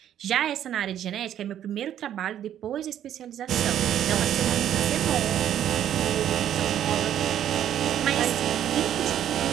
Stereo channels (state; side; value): quieter; left; 10.7 dB